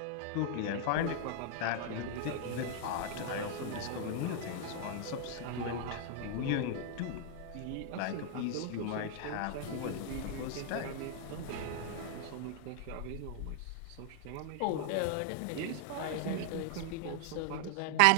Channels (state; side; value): different; both; correlation 0.00